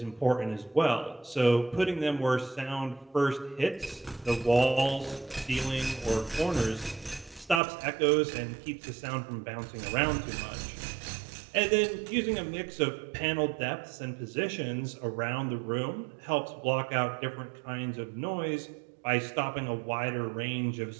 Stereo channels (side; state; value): left; drops out; at 7.6 s